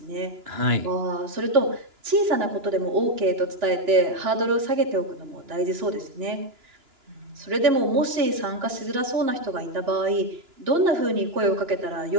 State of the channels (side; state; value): left; late; 2.9 ms